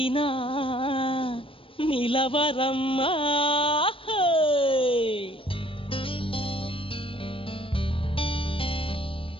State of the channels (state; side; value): late; right; 0.26 ms